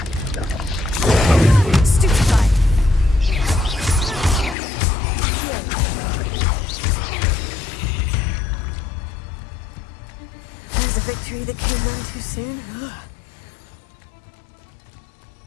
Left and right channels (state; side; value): drops out; right; at 4.5 s